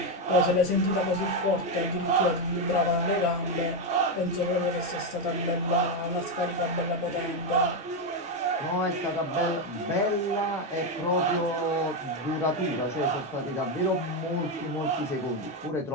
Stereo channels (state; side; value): normal; both; correlation 0.07